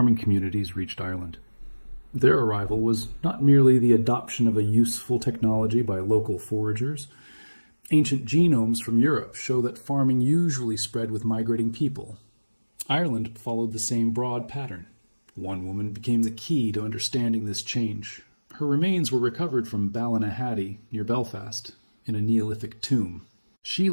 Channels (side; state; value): both; inverted; correlation -1.00